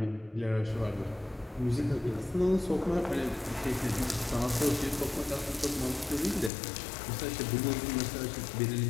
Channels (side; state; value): right; drops out; at 6.5 s